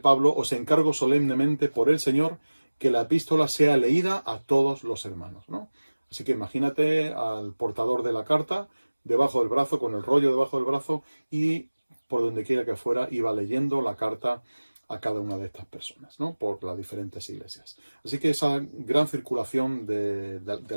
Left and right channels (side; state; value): both; inverted; correlation -1.00